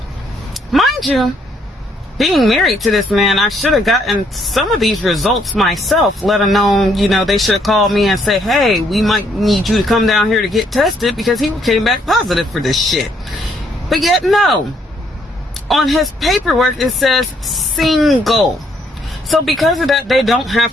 Mind you, being married to this man, I should have gotten some of these results myself, let alone, you know, they should have called me and say, hey, we might need you to come down here to get tested because he came back positive for this shit. But yet, no. On his paperwork, it says single. So because of that, they don't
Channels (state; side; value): normal; both; correlation 0.69